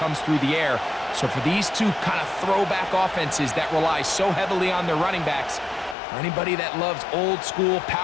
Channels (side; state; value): right; drops out; at 6.0 s